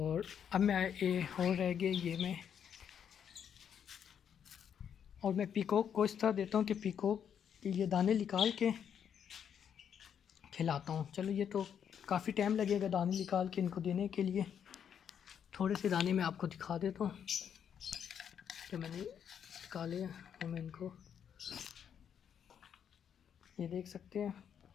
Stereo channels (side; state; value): right; quieter; 8.3 dB